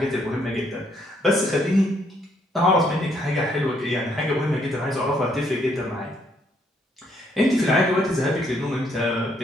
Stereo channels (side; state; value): both; normal; correlation 0.70